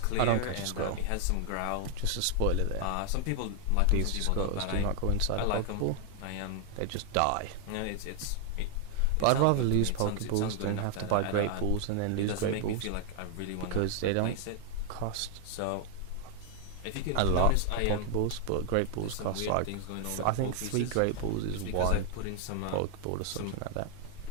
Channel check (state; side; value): different; both; correlation 0.00